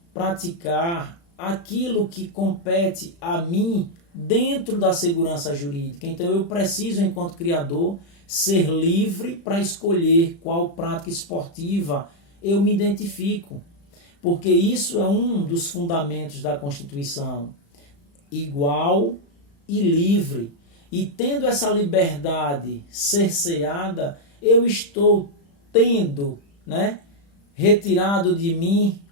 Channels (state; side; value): late; right; 35 ms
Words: praticar aquilo que compete a mim dentro da segurança jurídica. Então eu preciso, enquanto criador, ser livre para escolher qual prática esportiva eu me identifico. Porque isso é um dos fundamentos da Constituição. Igual e livre. E tendo essa liberdade cerceada, eu estou tendo, retirado de mim